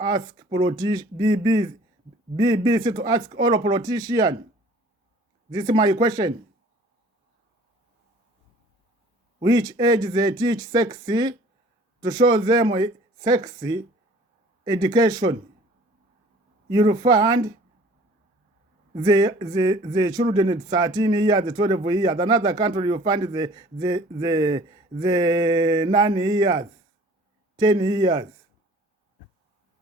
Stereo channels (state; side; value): normal; both; correlation 0.50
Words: ask BBC to ask all politicians. This is my question. Which age they teach sexy to show them sexy education? You'll find the children at 13 years, 12 years. Another country you find the 9 years, 10 years.